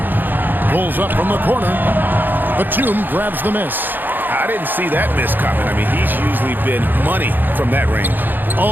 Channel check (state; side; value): late; left; 0.090 ms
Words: Pulls up from the corner. Batum grabs the miss. I didn't see that miss coming. I mean, he's usually been money from that range.